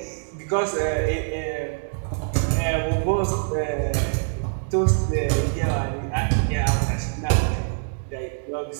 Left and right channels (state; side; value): silent; left; 62 dB below the other